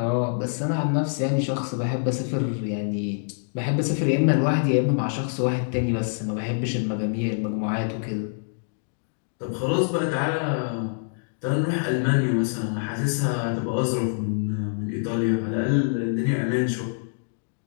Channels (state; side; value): silent; right; digital silence